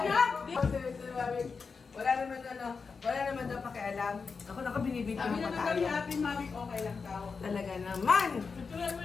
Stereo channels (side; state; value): right; quieter; 5.0 dB